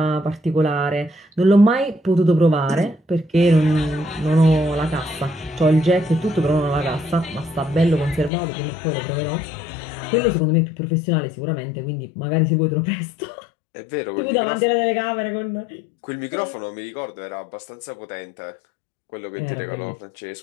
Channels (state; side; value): drops out; right; at 8.3 s